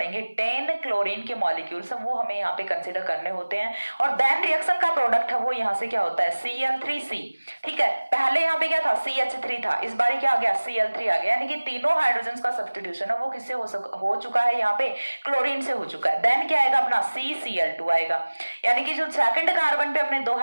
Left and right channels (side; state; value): both; inverted; correlation -1.00